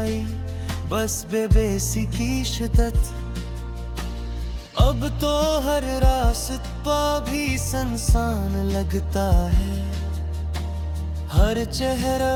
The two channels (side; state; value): both; identical; correlation 1.00